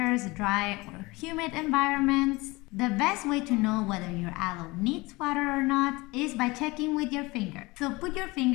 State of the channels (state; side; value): quieter; right; 22.9 dB